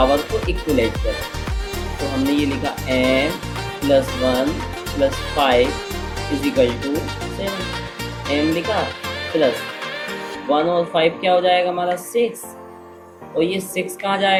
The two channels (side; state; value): both; identical; correlation 1.00